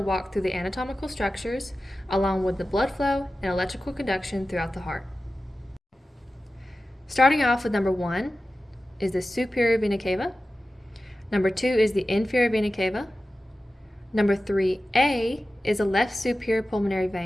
walk through the anatomical structures along with the blood flow and electrical conduction throughout the heart. Starting off with number 1 is the superior vena cava. Number 2 is the inferior vena cava. Number 3A is the left superior pulmonary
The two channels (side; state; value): both; normal; correlation 0.95